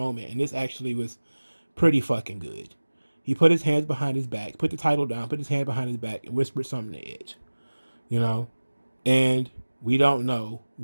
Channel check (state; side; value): inverted; both; correlation -1.00